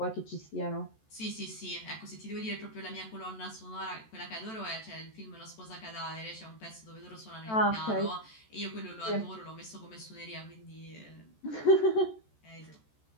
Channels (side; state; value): right; late; 14 ms